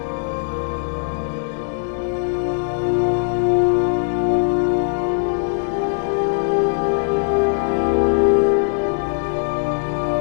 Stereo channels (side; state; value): right; silent; 66 dB below the other